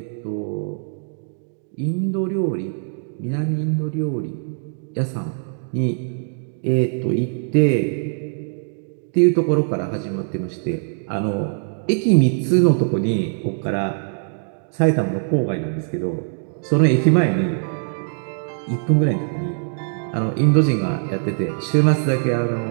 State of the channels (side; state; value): left; silent; digital silence